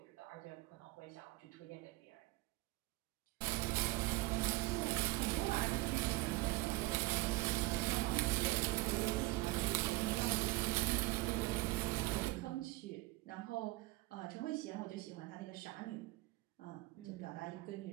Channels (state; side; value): quieter; left; 21.0 dB